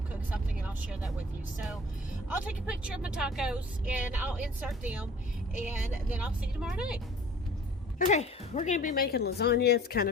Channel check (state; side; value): normal; both; correlation 0.48